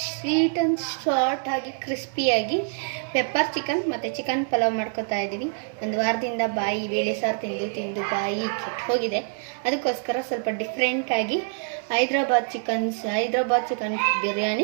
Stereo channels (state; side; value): silent; left; 61 dB below the other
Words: ಸ್ವೀಟ್ ಆ್ಯಂಡ್ ಶಾರ್ಟ್ ಆಗಿ ಕ್ರಿಸ್ಪಿಯಾಗಿ ಪೆಪ್ಪರ್ ಚಿಕನ್ ಮತ್ತು ಚಿಕನ್ ಪಲಾವ್ ಮಾಡ್ಕೊತಾ ಇದ್ದೀವಿ. ಒಂದು ವಾರದಿಂದ ಬೇಳೆ ಸಾರು ತಿಂದು ಬಾಯಿ ಕೆಟ್ಟು ಹೋಗಿದೆ. ಅದಕ್ಕೋಸ್ಕರ ಸ್ವಲ್ಪ ಡಿಫ್ರೆಂಟಾಗಿ ಹೈದ್ರಾಬಾದ್ ಚಿಕನ್